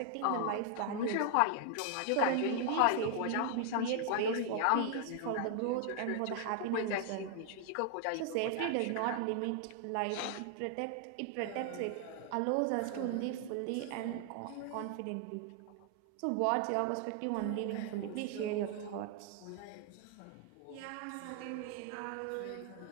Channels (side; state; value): both; different; correlation 0.00